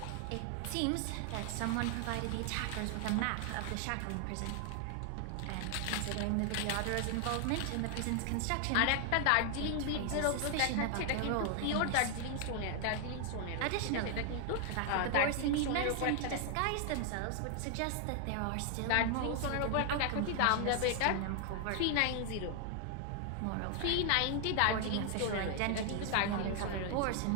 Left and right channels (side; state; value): both; different; correlation 0.00